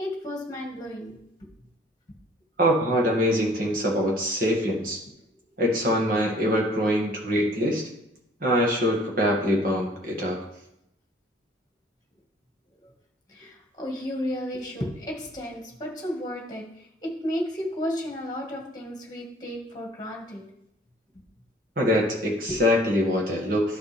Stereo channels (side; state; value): both; normal; correlation 0.54